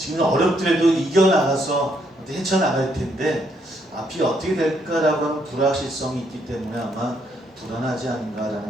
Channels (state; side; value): normal; both; correlation 0.73